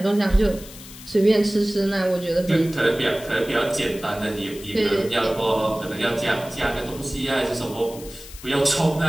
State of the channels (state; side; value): noise; left; hiss, 16 dB below the sound